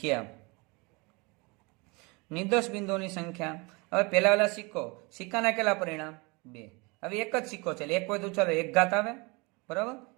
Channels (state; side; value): quieter; left; 27.7 dB